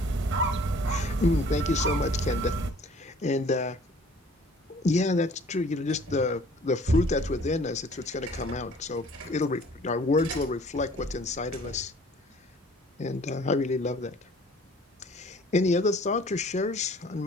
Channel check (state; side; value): normal; both; correlation 0.53